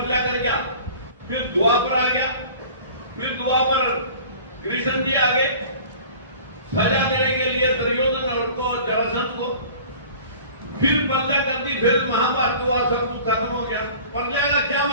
कर गया। फिर द्वापर आ गया, फिर द्वापर कृष्ण जी आ गए सजा देने के लिए दुर्योधन को जरासंध को। फिर प्रलय कर दी, फिर महाभारत हुआ, सब कुछ खत्म हो गया। प्रलय का क्या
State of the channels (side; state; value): both; inverted; correlation -0.44